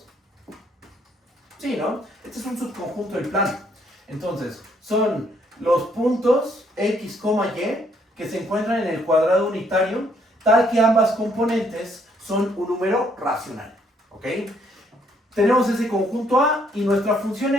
Sí, ¿no? Este es un subconjunto del plano. Entonces, son los puntos X, Y que se encuentran en el cuadrado unitario, tal que ambas componentes son un número racional. ¿Ok? Tenemos ese conjunto A y nuestra función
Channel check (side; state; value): both; normal; correlation 0.68